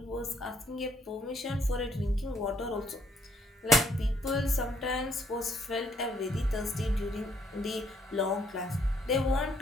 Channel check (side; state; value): both; normal; correlation 0.69